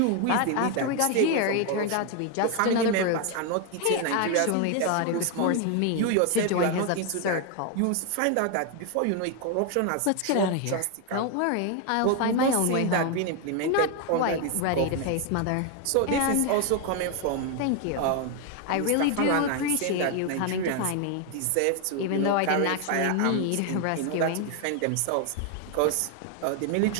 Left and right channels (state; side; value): different; both; correlation 0.01